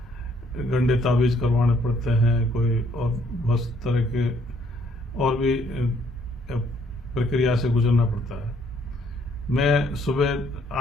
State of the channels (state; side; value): normal; both; correlation 0.66